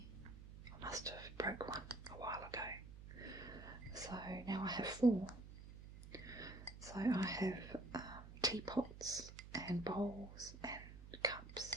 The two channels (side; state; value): right; noise; hum, 13 dB below the sound